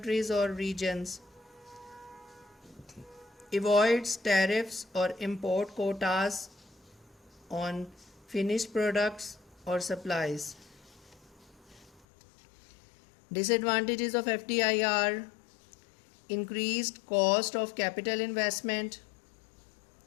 or regions, avoids tariffs or import quotas on finished products or supplies. Disadvantages of FDI are increased cost of capital investment,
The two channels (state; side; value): drops out; right; at 12.1 s